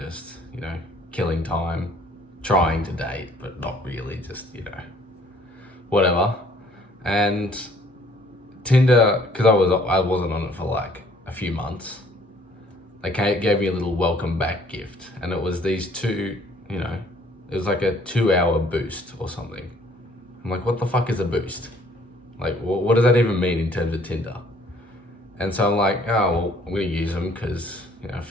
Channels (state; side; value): normal; both; correlation 0.59